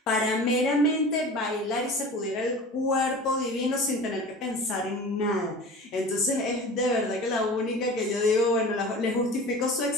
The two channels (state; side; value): normal; both; correlation 0.37